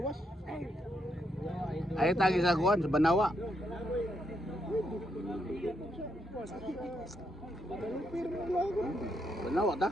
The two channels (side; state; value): both; normal; correlation 0.78